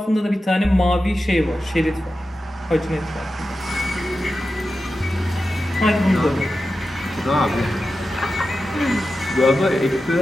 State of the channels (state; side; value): normal; both; correlation 0.92